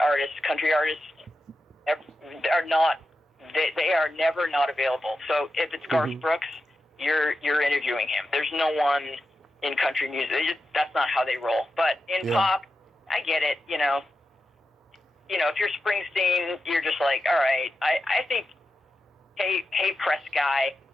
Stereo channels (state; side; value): normal; both; correlation 0.90